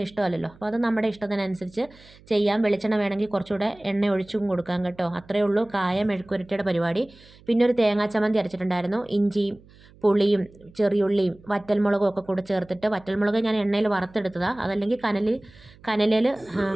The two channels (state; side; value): noise; right; hum, 25 dB below the sound